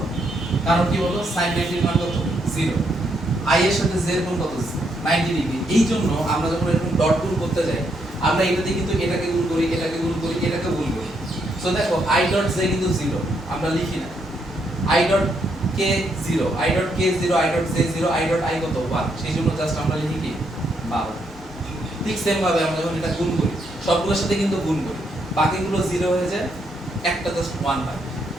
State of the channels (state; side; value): normal; both; correlation 0.76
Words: কারণ কি বলো, sin 90 এর মান কত, 0। i এর সাথে j এর কোণ কত, 90 ডিগ্রি। এই জন্য আমরা যখন এরকম ডট গুণ করতে যাই, আমরা এটাতে কিন্তু এটাকে গুণ করি, এটাকে গুণ করি, এটাকে গুণ করি। সো দেখো i ডট j কিন্তু 0, আমরা লিখি না। i dot k 0, i dot k 0, i dot j 0, i dot i কত, 1। সেই জন্য জাস্ট আমরা লিখি কি 12। ঠিক সেম ভাবে আমরা যখন এটা গুণ করি সবগুলোর সাথে কিন্তু গুণ করি, বাকিগুলো 0 হয়ে যায়, একটা জাস্ট 1 পাই।